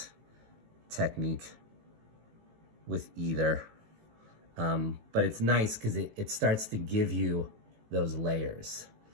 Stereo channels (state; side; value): late; left; 18 ms